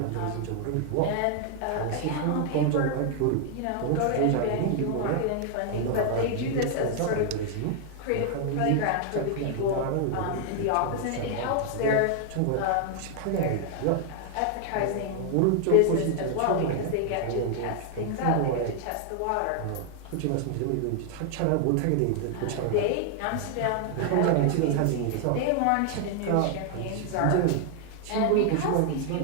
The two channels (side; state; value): both; different; correlation 0.00